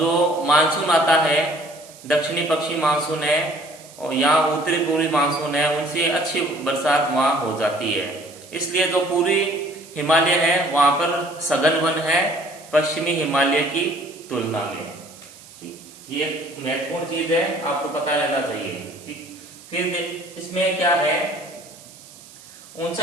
मानसून आता है दक्षिणी पश्चिमी मानसून है और यहाँ उत्तरी पूर्वी मानसून है, उनसे अच्छी बरसात वहां हो जाती है। इसलिए जो पूर्वी हिमालय है वहां पर सघन वन है पश्चिमी हिमालय की तुलना में। ठीक, ये एक महत्वपूर्ण चीज है, आपको पता रहना चाहिए। ठीक, फिर इसमें क्या है,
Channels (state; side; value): noise; right; hiss, 20 dB below the sound